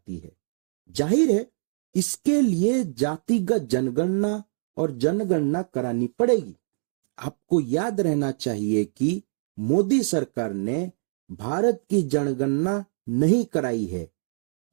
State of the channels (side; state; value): left; silent; digital silence